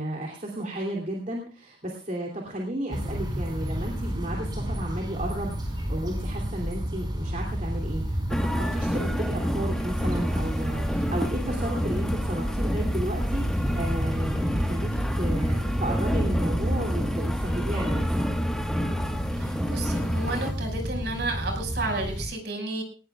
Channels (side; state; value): both; normal; correlation 0.83